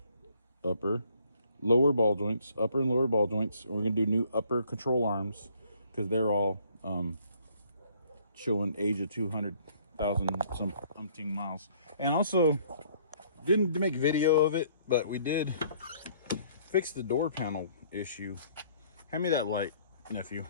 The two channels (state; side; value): inverted; both; correlation -0.61